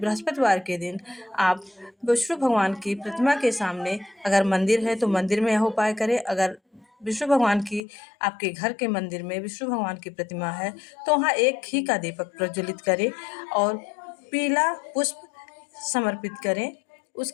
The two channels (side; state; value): right; drops out; at 7.8 s